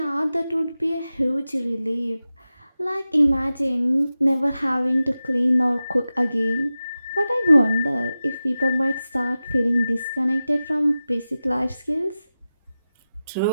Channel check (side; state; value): both; inverted; correlation -0.94